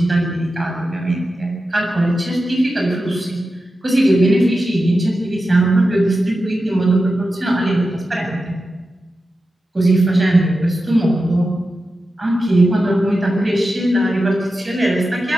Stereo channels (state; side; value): normal; both; correlation 0.91